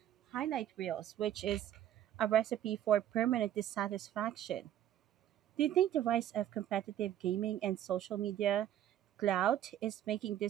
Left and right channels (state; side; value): quieter; left; 11.5 dB